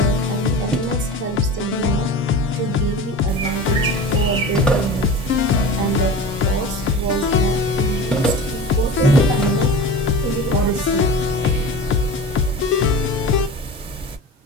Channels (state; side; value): normal; both; correlation 0.33